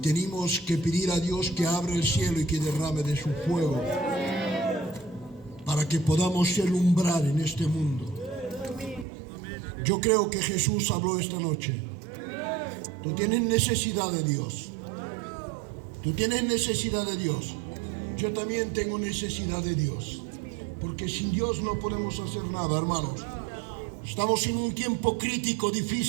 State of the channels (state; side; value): drops out; left; at 9.1 s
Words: que pedir a Dios que abra el cielo y que derrame de su fuego para que podamos alumbrar en este mundo. Yo creo que Jesús habló esta noche. Tú tienes necesidad de Dios. Tú tienes necesidad de Dios. Yo también tengo necesidad de Dios. Porque sin Dios no podemos hacer nada, hermanos. Estamos en un tiempo crítico,